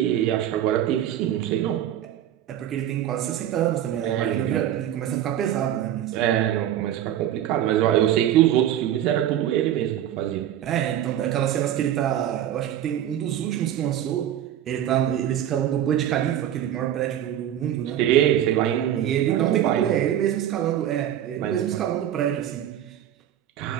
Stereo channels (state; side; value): quieter; left; 11.3 dB